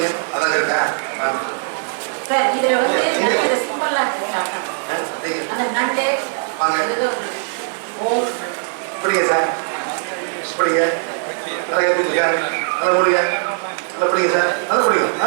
அதான் இருக்கா? சார் இதுல வந்து நல்ல சிம்பிளா இருக்கு சார். அந்த நண்டு வாங்க. ஓ பிடிங்க சார். பிடிங்க. நல்லா கேட்பீங்க. நல்லா முடிங்க. நல்லா பிடிங்க சார். நல்லா பிடிங்க.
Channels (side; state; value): left; silent; digital silence